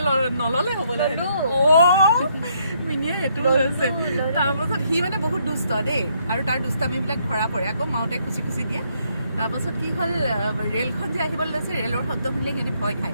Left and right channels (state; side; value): inverted; both; correlation -0.72